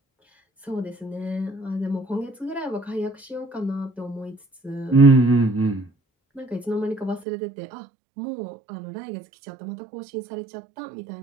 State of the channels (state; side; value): drops out; left; at 7.2 s